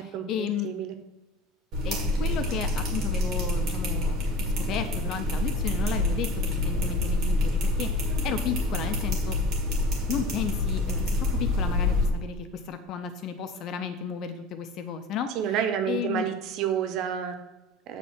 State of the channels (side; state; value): both; normal; correlation 0.37